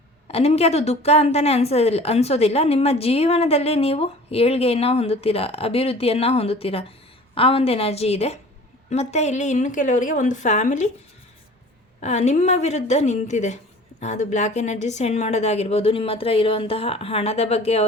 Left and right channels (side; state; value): both; normal; correlation 0.45